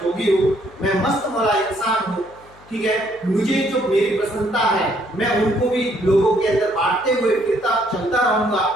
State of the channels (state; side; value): noise; left; hum, 26 dB below the sound